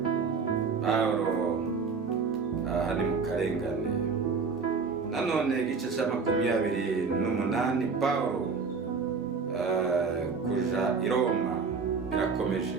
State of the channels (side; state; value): left; quieter; 5.0 dB